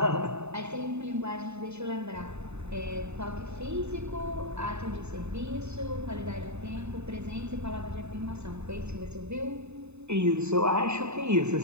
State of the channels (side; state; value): left; late; 0.81 ms